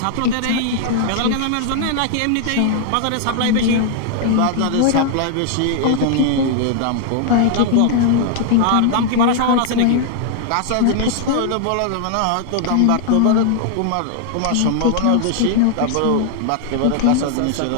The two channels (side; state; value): both; different; correlation 0.00